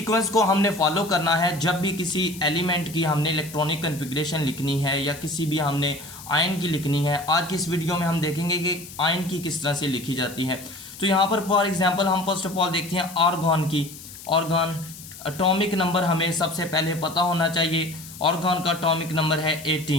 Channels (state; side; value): noise; left; hiss, 15 dB below the sound